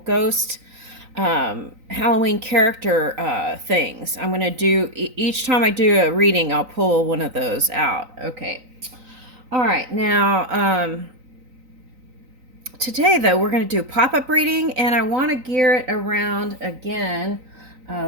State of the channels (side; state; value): left; late; 3.9 ms